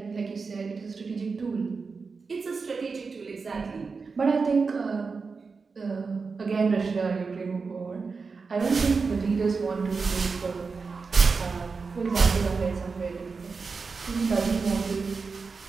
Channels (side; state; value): left; quieter; 4.7 dB